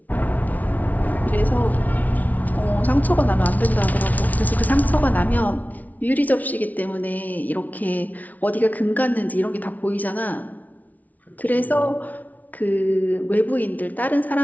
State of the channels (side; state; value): right; late; 0.075 ms